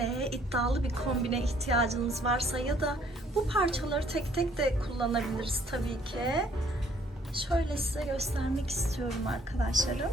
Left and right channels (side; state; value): both; normal; correlation 0.62